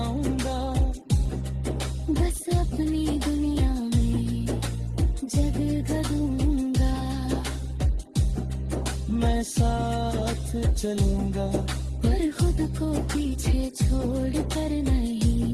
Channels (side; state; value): both; identical; correlation 1.00